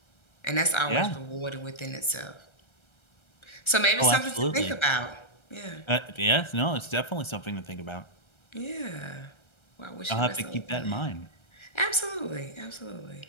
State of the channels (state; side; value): late; right; 1.3 ms